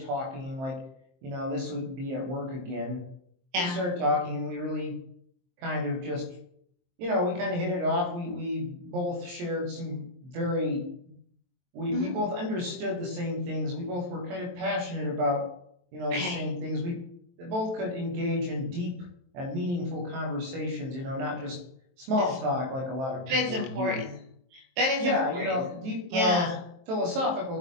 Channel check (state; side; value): late; left; 23 ms